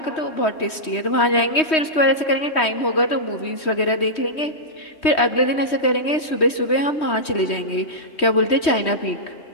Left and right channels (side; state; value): right; late; 3.2 ms